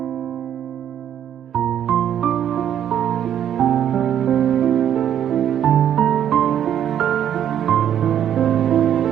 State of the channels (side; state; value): left; quieter; 9.9 dB